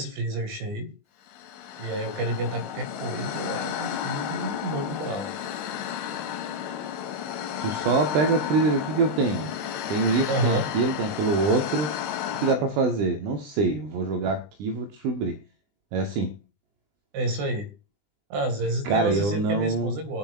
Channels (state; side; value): late; left; 20 ms